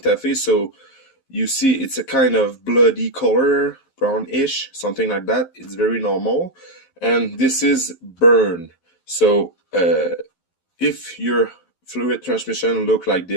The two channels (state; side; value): late; right; 11 ms